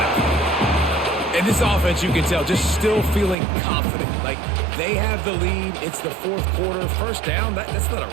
And this offense, you can tell, just still feeling confident. Like, they have the lead. It's the 4th quarter. First down, that's not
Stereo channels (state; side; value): drops out; left; at 3.4 s